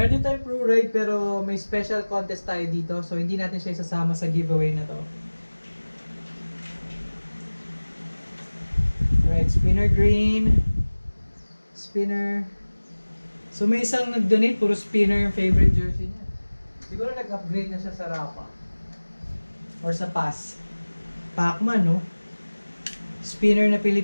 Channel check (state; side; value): inverted; both; correlation -1.00